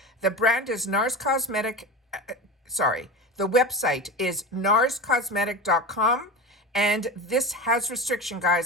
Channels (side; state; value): both; normal; correlation 0.26